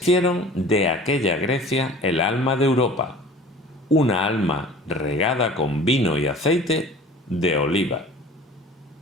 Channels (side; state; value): both; normal; correlation 0.44